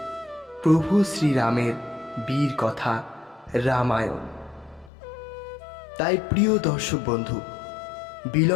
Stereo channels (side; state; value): right; drops out; at 4.9 s